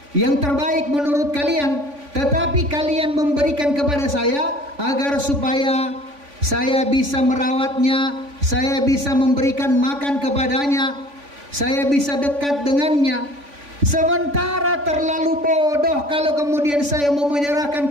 yang terbaik menurut kalian, tetapi kalian memberikan kepada saya agar supaya saya bisa merawatnya, saya bisa memberikan makan kepadanya, saya bisa dekat dengannya. Sementara terlalu bodoh kalau kemudian saya mau menyerahkan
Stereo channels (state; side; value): late; left; 3.5 ms